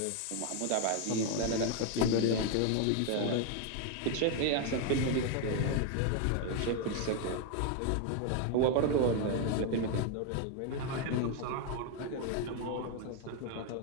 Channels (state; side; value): different; both; correlation 0.01